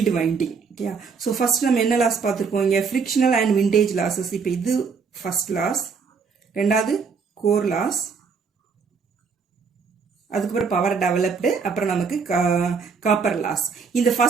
winding. Okay, so first நம்ம என்ன லாஸ் பார்த்துருக்கோம் இங்கே ஃப்ரிக்ஷனல் அண்ட் விண்டேஜ் லாஸஸ். இப்போ இது ஃபர்ஸ்ட் லாஸ், ரெண்டாவது கோர் லாஸ், அதுக்கப்புறம் பவர் டெவலப்டு, அப்புறம் நமக்கு காப்பர் லாஸ். இந்த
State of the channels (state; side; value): quieter; left; 5.4 dB